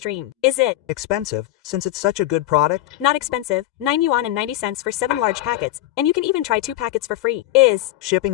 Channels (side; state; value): right; quieter; 15.2 dB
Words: Is it Expensive, since it's such a good product? not expensive? 9 yuan and 90 cents for 7 large packets, and you can even try 2 packets for free. Is Shipping